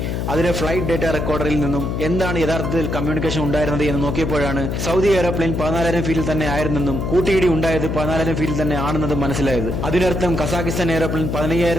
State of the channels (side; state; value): left; noise; hum, 2 dB below the sound